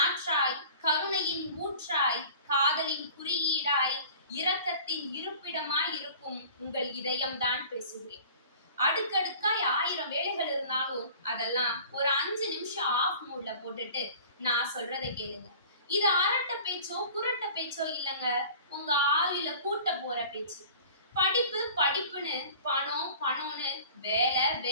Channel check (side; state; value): both; inverted; correlation -0.44